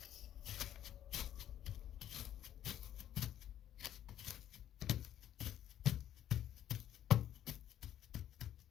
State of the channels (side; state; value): right; quieter; 11.3 dB